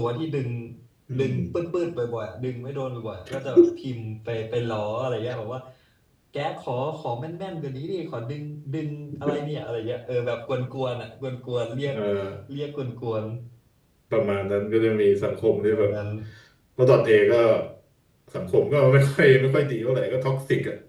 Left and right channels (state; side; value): identical; both; correlation 1.00